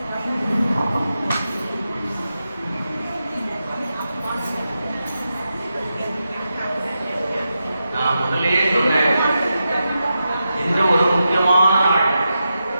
நான் முதலே சொன்னேன், இந்த ஒரு முக்கியமான நாள்,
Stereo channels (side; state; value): both; inverted; correlation -0.89